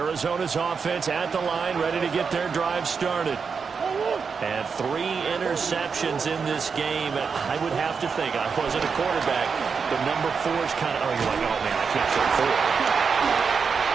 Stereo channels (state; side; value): quieter; left; 5.7 dB